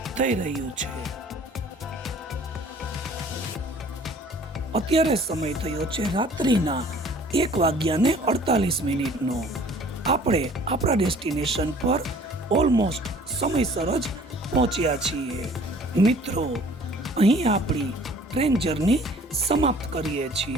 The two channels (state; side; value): normal; both; correlation 0.52